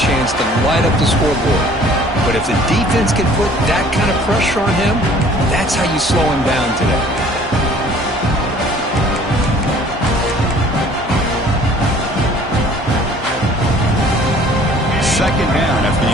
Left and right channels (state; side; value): normal; both; correlation 0.53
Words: to light up the scoreboard. But if the defense can put that kind of pressure on him, that's how you slow him down today. Second down after the